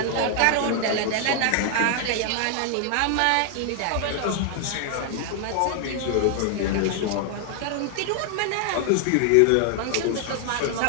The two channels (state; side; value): different; both; correlation 0.00